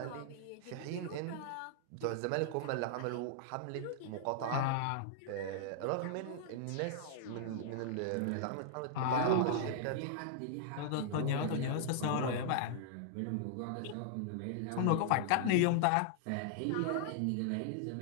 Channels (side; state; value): both; different; correlation -0.01